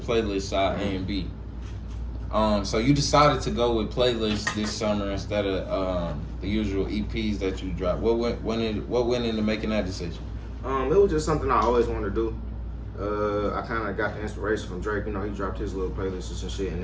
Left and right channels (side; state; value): both; identical; correlation 1.00